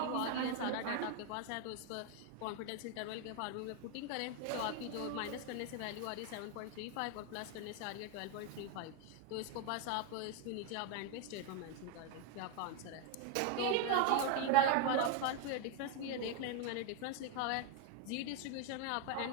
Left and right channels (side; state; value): both; different; correlation 0.02